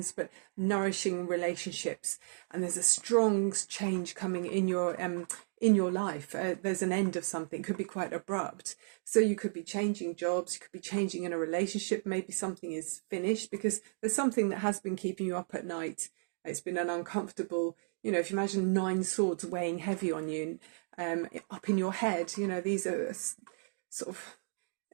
but nourishing relationships. And there's a strong change coming in your life. There's an end of something, could be quite abrupt. So you could be changing jobs, you could be changing in a relationship, maybe something is finished because there's something that has been keeping you up at night. It's been an uncomfortable, you know, if you imagine 9 swords weighing heavy on you, up in your head, you know, these are sort of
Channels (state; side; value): silent; left; digital silence